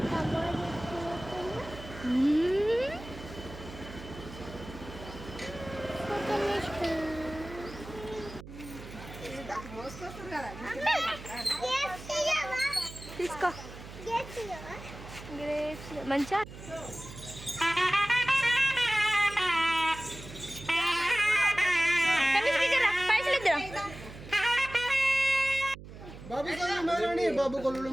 తీసుకో మంచిగా బాబు కొల్లు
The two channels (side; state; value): right; noise; hum, 14 dB below the sound